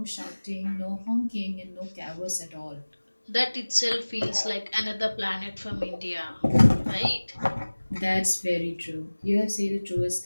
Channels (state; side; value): inverted; both; correlation -1.00